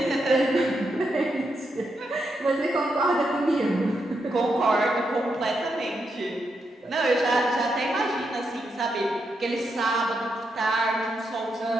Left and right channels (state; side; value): normal; both; correlation 0.82